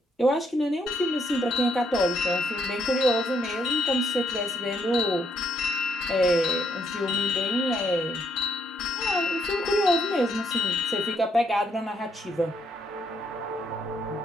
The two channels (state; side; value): normal; both; correlation 0.72